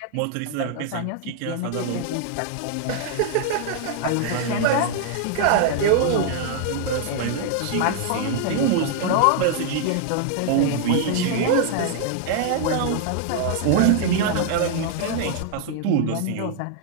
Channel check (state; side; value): different; both; correlation 0.00